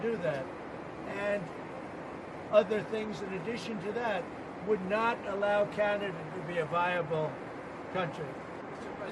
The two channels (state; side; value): identical; both; correlation 1.00